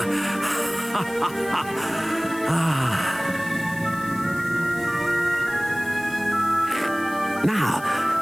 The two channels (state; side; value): noise; left; hiss, 18 dB below the sound